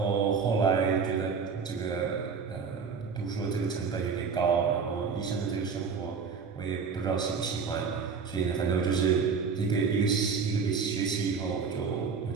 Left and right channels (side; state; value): left; quieter; 5.6 dB